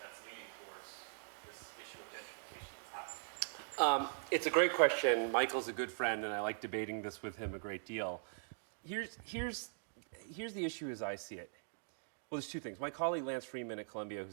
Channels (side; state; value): left; silent; digital silence